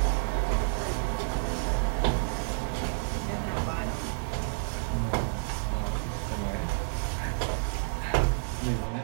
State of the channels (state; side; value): silent; left; 58 dB below the other